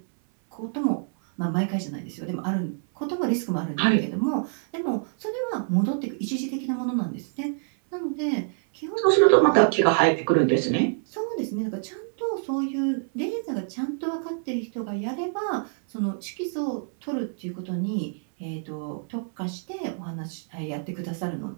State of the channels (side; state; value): left; silent; 61 dB below the other